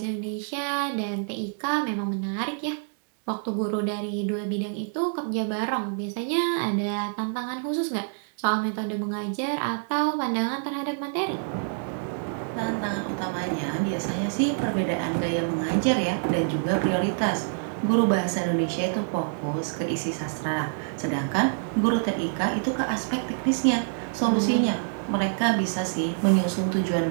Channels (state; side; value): silent; left; 60 dB below the other